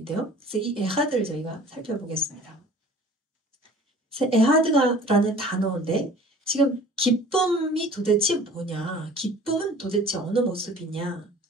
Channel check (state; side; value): normal; both; correlation 0.46